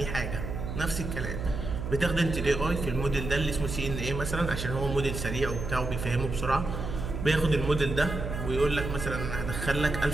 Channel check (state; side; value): noise; right; hum, 5 dB below the sound